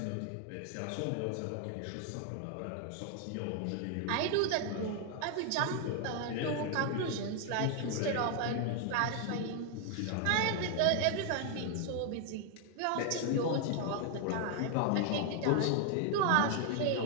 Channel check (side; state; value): both; different; correlation 0.00